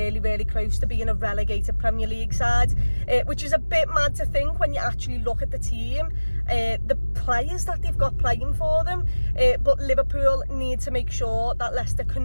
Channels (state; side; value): inverted; both; correlation -1.00